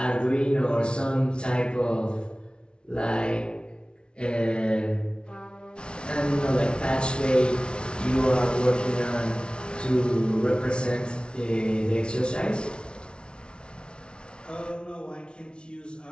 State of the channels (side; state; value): right; late; 0.056 ms